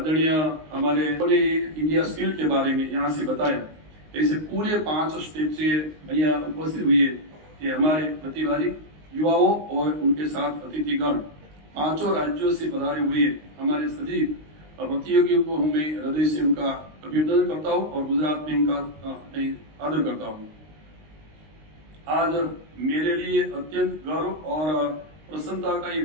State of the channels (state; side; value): late; left; 19 ms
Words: हमारे इंडिया स्किल के बारे में यहाँ से बताया। ऐसे पूरे 5 स्टेट से यहाँ उपस्थित हुए कि हमारे प्रतिभागी युवाओं और उनके साथ अतिथिगण 5 राज्यों से पधारे हुए हमारे सभी प्रतियोगियों को मैं हृदय से उनका अभिनंदन करता हूँ और गुजरात में इनका आदर करता हूँ। आज मेरे लिए अत्यंत गर्व और प्रसन्नता का ये